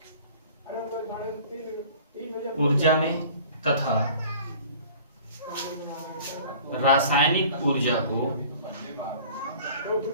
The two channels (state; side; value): inverted; both; correlation -0.47